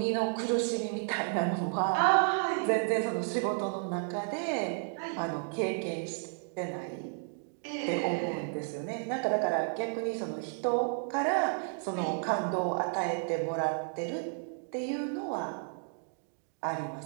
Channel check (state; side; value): silent; left; 56 dB below the other